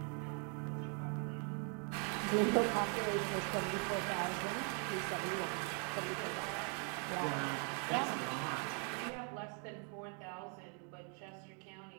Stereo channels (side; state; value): left; quieter; 39.6 dB